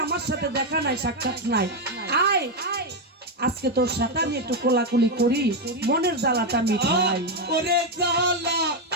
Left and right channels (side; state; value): both; normal; correlation 0.06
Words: আমার সাথে দেখা নাই, সাক্ষাৎ নাই, আয় আজকে তোর সাথে আমি একটু কোলাকুলি করি, মনের জ্বালাটা মিঠাই। ওরে জ্বালা